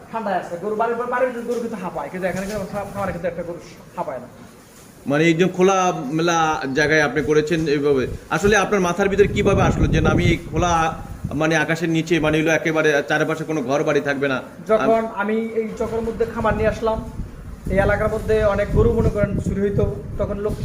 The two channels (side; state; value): both; identical; correlation 1.00